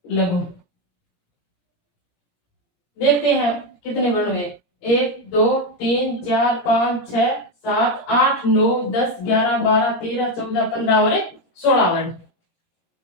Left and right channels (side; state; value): right; late; 17 ms